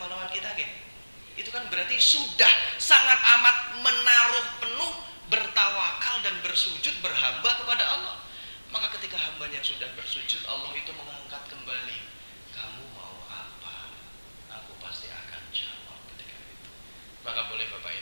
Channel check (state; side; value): inverted; both; correlation -1.00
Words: kita, gitu. Itu kan berarti sudah sangat amat menaruh penuh, bertawakal dan bersujud berhamba kepada Allah. Maka ketika hambanya sudah bersujud, Allah itu mengangkat kembali. Kamu mau apa? Aku pasti akan jawab ketika itu. Maka boleh Bapak